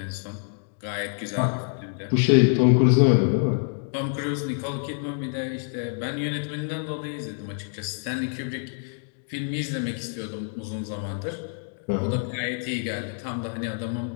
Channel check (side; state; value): right; silent; 61 dB below the other